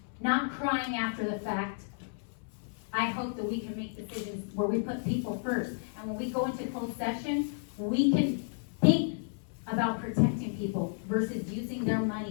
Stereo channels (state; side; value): silent; right; 56 dB below the other